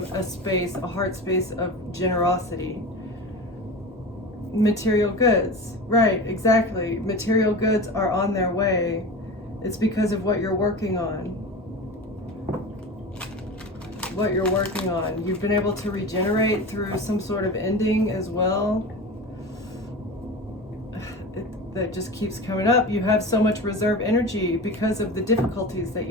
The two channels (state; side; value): normal; both; correlation 0.30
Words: a space, a heart space of generosity. Material goods, right, exactly. Material goods are on their way. It's because of what you're working on. What you're working on. You've been able to regenerate through some sort of ending as well. That just keeps coming up. You have so much reserve energy because of the difficulties that